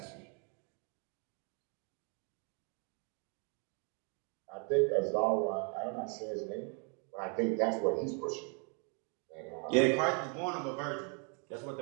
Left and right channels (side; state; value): left; quieter; 38.3 dB